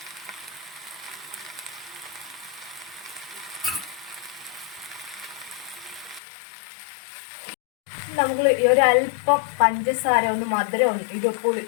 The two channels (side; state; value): right; drops out; at 6.2 s